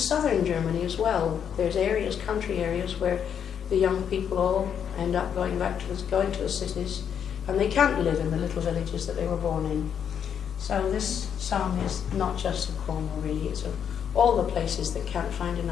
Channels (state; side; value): quieter; right; 8.2 dB